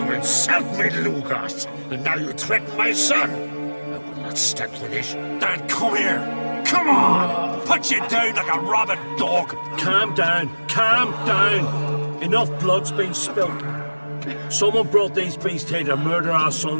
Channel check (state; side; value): inverted; both; correlation -1.00